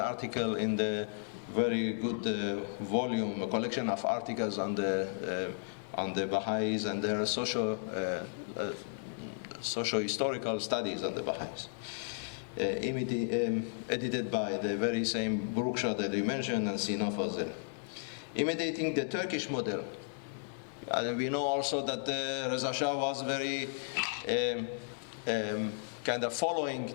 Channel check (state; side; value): silent; right; 55 dB below the other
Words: in the very good volume, a collection of articles on the Baha'is and their socio-historical studies on the Baha'is, edited by the very same Burukshah that you mentioned and Sina Fazil. Imitating the Turkish model. We know also that Reza Shah was very kind of following